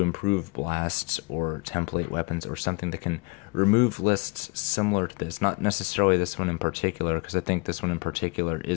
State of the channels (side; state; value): right; quieter; 28.1 dB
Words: improve blasts or template weapons, or something that can remove lists similar to this. Not necessarily this one in particular, because I think this one in particular